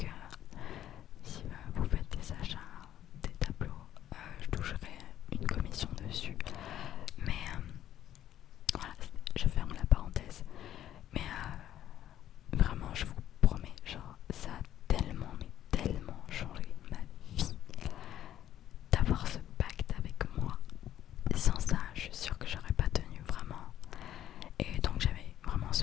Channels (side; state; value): right; quieter; 11.7 dB